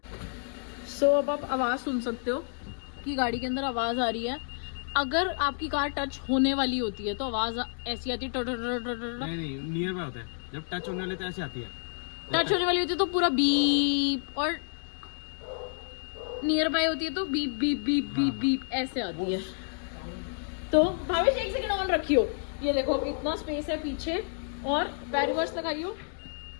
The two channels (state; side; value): silent; right; digital silence